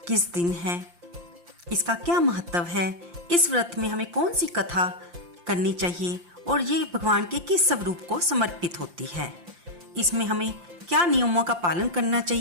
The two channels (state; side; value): late; left; 5.8 ms